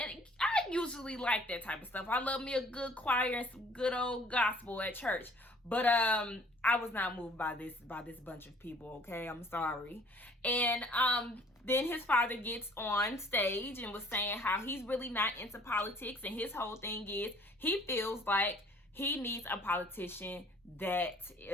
I usually like that type of stuff. I love me a good choir and some good old gospel at church. But I was not moved by this bunch of people, okay? I'm sorry. And then his father gets on stage and was saying how he's really not into politics, and his whole thing is he feels like he needs a politician that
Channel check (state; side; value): normal; both; correlation 0.55